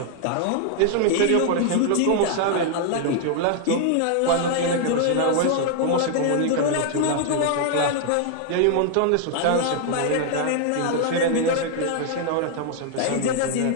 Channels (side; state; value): both; different; correlation 0.00